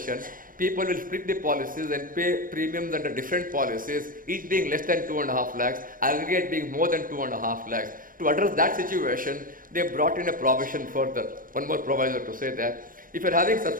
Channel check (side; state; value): left; late; 0.40 ms